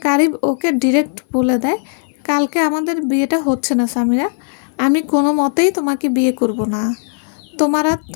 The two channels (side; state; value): right; silent; 60 dB below the other